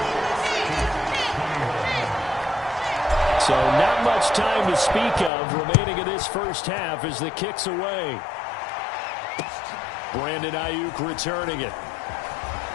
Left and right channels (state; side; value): drops out; right; at 5.3 s